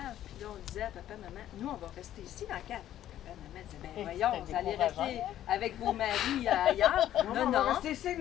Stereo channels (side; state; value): right; quieter; 12.1 dB